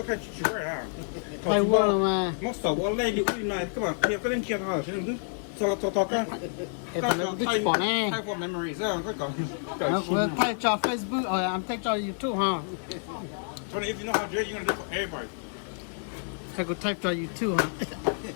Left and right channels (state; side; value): silent; right; digital silence